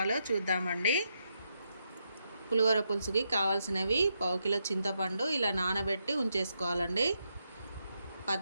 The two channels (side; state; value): both; inverted; correlation -0.81